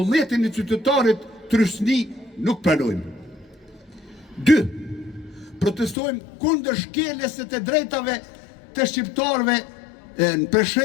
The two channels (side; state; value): right; drops out; at 6.0 s